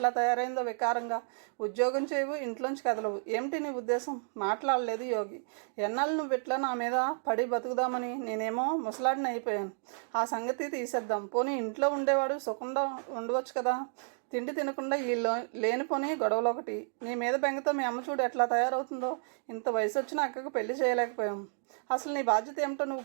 తయారైందో వికారంగా. ఉద్యోగం చేయవు, ఇంట్లోంచి కదలవు. ఏమిటి నీ ఉద్దేశం? మాట్లాడలేదు యోగి. ఎన్నాళ్ళు నువ్వు ఇట్లా నా మీద పడి బతుకుదామని? నేనేమో ముసలాడిని అయిపోయాను. ఆ సంగతి తీసేద్దాం. పోనీ ఇంట్లో ఉండేవాడు సుఖంగా ఉండవచ్చు కదా. తిండి తినకుండా ఈ లేనిపోని గొడవలు ఒకటి. నీ మీద బెంగతో మీ అమ్మ చూడు ఎట్లా తయారవుతుందో. ఇంత వయసు వచ్చిన అక్కకు పెళ్లి చేయలేకపోయాం. అసలు నీ బాధ్యత ఏమిటో నువ్వు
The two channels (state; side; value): silent; left; digital silence